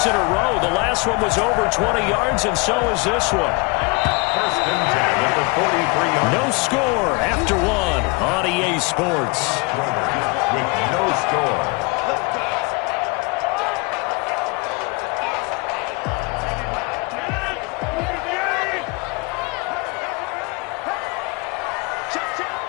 in a row. The last one was over 20 yards, and so is this one. 1st and 10 at the 43-yard. No score after 1 on EA Sports. With no score.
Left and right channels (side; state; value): right; quieter; 28.4 dB